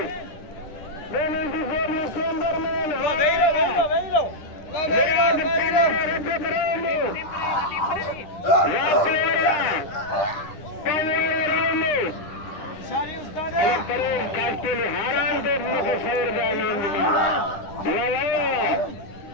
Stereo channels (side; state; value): right; late; 10 ms